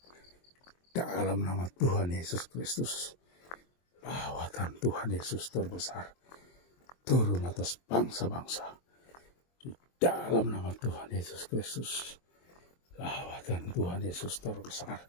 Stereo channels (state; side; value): late; right; 23 ms